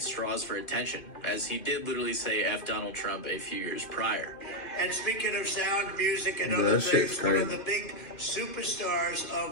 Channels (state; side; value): late; right; 2.5 ms